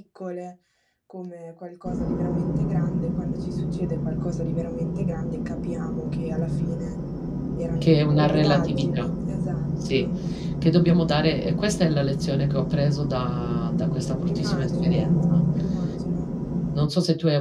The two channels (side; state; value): both; identical; correlation 1.00